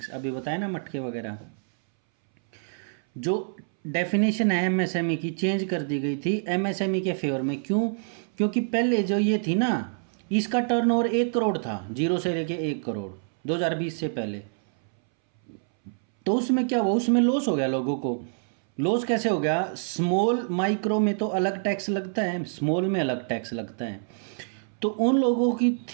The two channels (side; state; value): left; silent; 61 dB below the other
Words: अभी बताया ना मटके वगैरह। जो डेफिनेशन है एमएसएमई की चेंज कर दी गई थी एमएसएमई के फेवर में। क्यों? क्योंकि पहले जो ये थी ना, इसका टर्नओवर 1 करोड़ था, 0 से लेके 1 करोड़ 2020 से पहले। तो उसमें क्या हुआ, उसमें लॉस हो गया लोगों को। लॉस कैसे हो गया, स्मॉल माइक्रो में तो अलग टैक्स लगता है, स्मॉल में अलग टैक्स लगता है। तो उन लोगों की